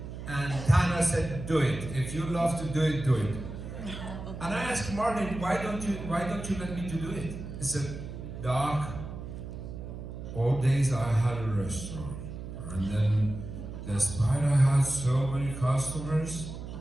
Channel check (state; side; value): noise; right; hum, 9 dB below the sound